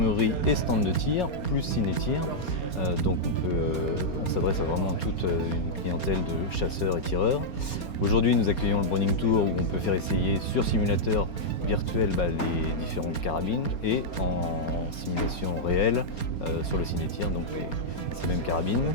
et stand de tir, plus ciné-tir. Donc on s'adresse à vraiment toute une clientèle de chasseurs et tireurs. Aujourd'hui, nous accueillons le Browning Tour où on peut faire essayer sur simulateur virtuel les différentes carabines et en simulation réelle sur le ciné-tir, donc ces mêmes carabines.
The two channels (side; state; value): right; late; 4.3 ms